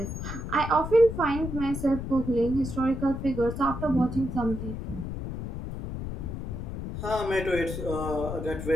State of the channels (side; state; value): left; noise; rumble, 6 dB below the sound